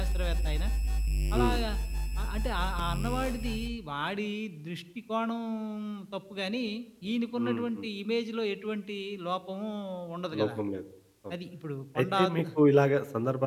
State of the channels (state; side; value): identical; both; correlation 1.00